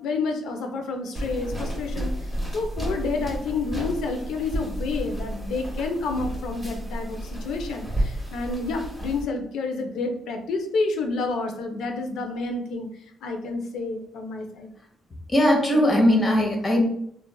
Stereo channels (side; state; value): both; normal; correlation 0.75